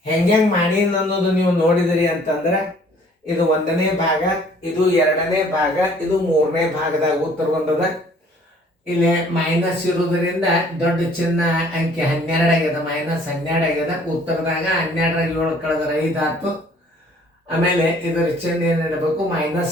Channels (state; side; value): normal; both; correlation 0.57